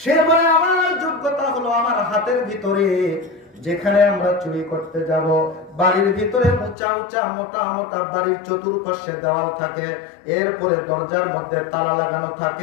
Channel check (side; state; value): right; drops out; at 6.8 s